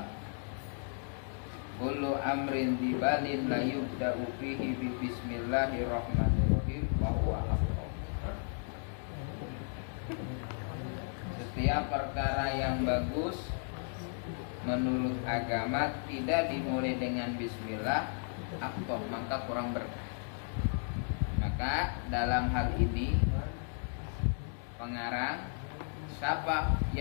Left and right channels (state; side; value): silent; right; 55 dB below the other